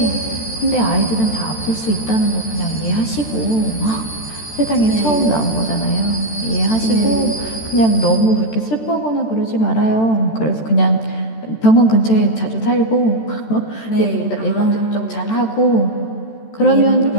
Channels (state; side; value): late; right; 13 ms